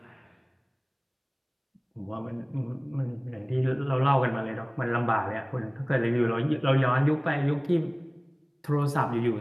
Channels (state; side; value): identical; both; correlation 1.00